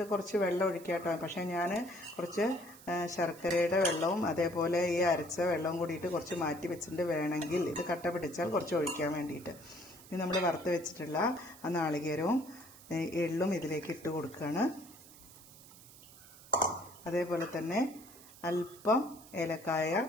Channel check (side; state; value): right; noise; hiss, 20 dB below the sound